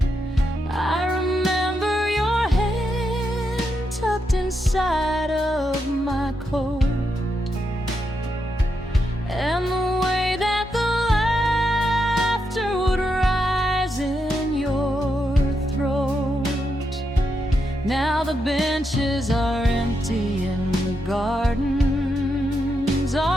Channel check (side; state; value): both; normal; correlation 0.83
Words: I remember your hand tucked inside of my coat, and the way that the laughter would rise in your throat. Now the benches are empty and the gardens